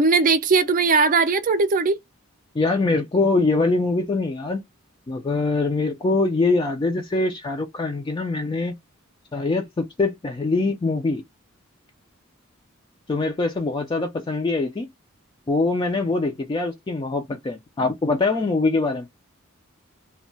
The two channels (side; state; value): both; normal; correlation 0.42